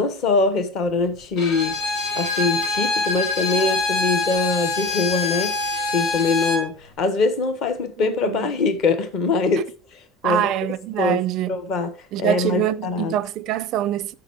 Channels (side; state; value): both; normal; correlation 0.33